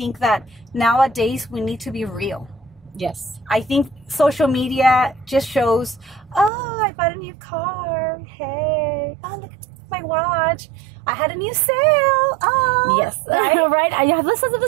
that nowadays we need to be real. Yes. I think social media just shows, oh, I bought a new car. Hey, oh, look at my watch. I had a new sale. Oh, yes. Right? Right. I have listens of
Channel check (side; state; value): left; drops out; at 6.5 s